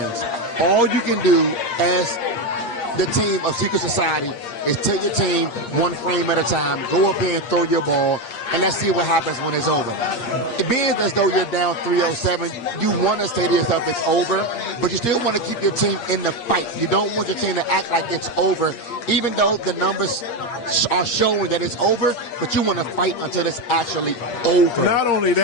All you can do as the team of Secret Society is take your team one frame at a time, go up here and throw your ball, and let's see what happens when it's over. It being as though you're down 307, you want to say to yourself it's over, but you still want to keep your team in the fight. You don't want your team to act like it's over, even though the numbers are showing that it's over, but you want to fight until it's actually over. Not only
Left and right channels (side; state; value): right; late; 8.5 ms